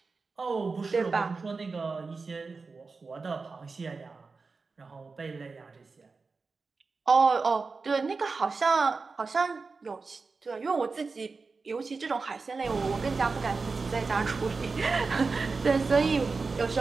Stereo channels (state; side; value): quieter; left; 4.3 dB